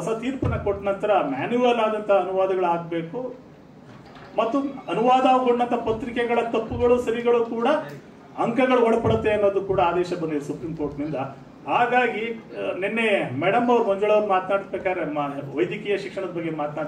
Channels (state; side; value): identical; both; correlation 1.00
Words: ತೀರ್ಪನ್ನ ಕೊಟ್ಟ ನಂತರ ಮ್ಯಾನ್ಯುವಲ್ ಆದಂತ ಅನುವಾದಗಳಾಗಬೇಕು ಮತ್ತು ಅನುವಾದಗೊಂಡಂತ ಪತ್ರಿಕೆಗಳ ತಪ್ಪುಗಳು ಸರಿಗಳು ಕೂಡ ಅಂಕಗಳು ಒಳಪಡುತ್ತೆ ಅನ್ನೋದು ಕೂಡ ಆದೇಶ ಬಂದಿದೆ ಸುಪ್ರೀಂ ಕೋರ್ಟ್ನಿಂದ. ಹಾಗಾಗಿ ನಿನ್ನೆ ಮೇಡಮ್ ಅವ್ರು ಮಂಜುಳಾ ಅವ್ರು ಮಾತನಾಡ್ಬೇಕಾದ್ರೆ ವೈದ್ಯಕೀಯ ಶಿಕ್ಷಣದ ಬಗ್ಗೆ